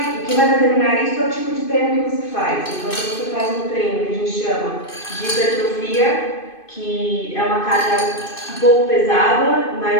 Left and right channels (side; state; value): right; late; 2.5 ms